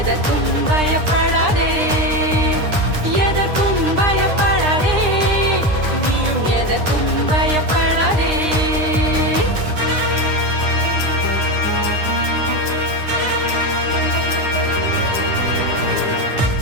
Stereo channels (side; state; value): left; late; 9.8 ms